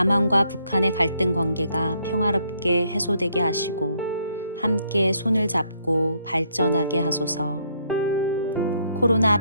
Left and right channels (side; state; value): both; inverted; correlation -0.71